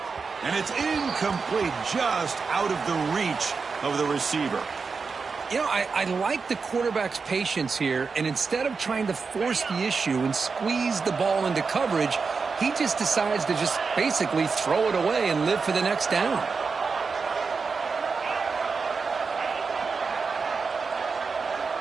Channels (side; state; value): left; quieter; 4.9 dB